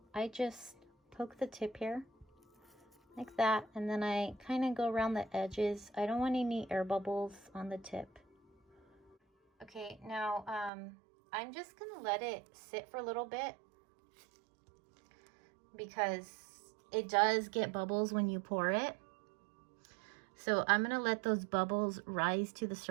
I just poke the tip here like that, and then I kind of go around the edges. I don't want any air bubbles on the tip. Okay, now I'm just gonna let it sit for a little bit because it does get bubbles when you pour it. So I'm gonna let those bubbles rise to the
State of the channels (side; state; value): left; drops out; at 10.7 s